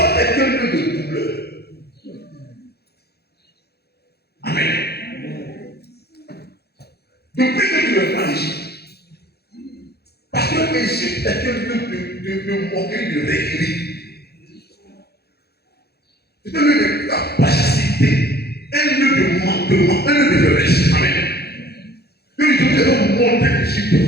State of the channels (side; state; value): right; late; 0.47 ms